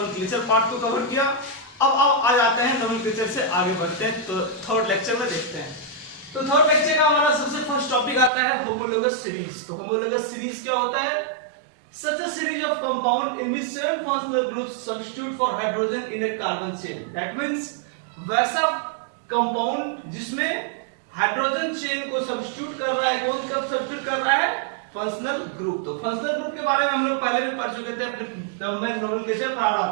पार्ट को कवर किया। अब आ जाते हैं नोमेनक्लेचर से आगे बढ़ते हैं, तो थर्ड लेक्चर में देखते हैं। तो थर्ड लेक्चर का हमारा सबसे फर्स्ट टॉपिक आता है होमोलोगस सीरीज। तो होमोलोगस सीरीज क्या होता है? Such a series of compound in which seven functional groups substitute for hydrogen in a carbon chain. That means वैसा कंपाउंड जिसमें हाइड्रोजन चेन को सब्स्टिट्यूट कर रहा है। कौन कब सब्स्टिट्यूट कर रहा है? Functional group. तो फंक्शनल ग्रुप के बारे में हम लोग पहले भी पढ़ चुके थे, अपने जब मैं नोमेनक्लेचर पढ़ा रहा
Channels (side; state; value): left; drops out; at 8.3 s